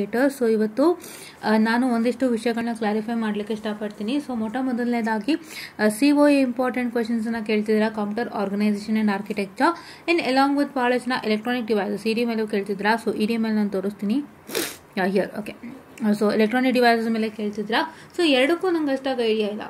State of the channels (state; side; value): identical; both; correlation 1.00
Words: So ಇವತ್ತು ನಾನು ಒಂದಿಷ್ಟು ವಿಷಯಗಳನ್ನ clarify ಮಾಡಲಿಕ್ಕೆ ಇಷ್ಟಪಡ್ತೀನಿ. ಸೊ ಮೊದಲನೇದಾಗಿ COA ಇಂಪಾರ್ಟೆಂಟ್ ಕ್ವೆಶನ್ಸನ್ನು ಕೇಳ್ತಿದ್ದೀರಾ, computer organisation and architecture in along with ಭಾಳ ಜನ ಎಲೆಕ್ಟ್ರಾನಿಕ್ ಡಿವೈಸಸ್ ಇಡಿ ಮೇಲೂ ಕೇಳ್ತಿದ್ರಾ. ಸೊ ಇಡಿ ಮೇಲೆ ನಾನು ತೋರಿಸ್ತೀನಿ here. Okay, so electronic devices ಮೇಲೆ ಕೇಳ್ತಿದ್ರಾ. ಸೊ ಎರಡಕ್ಕೂ ನಂಗೆ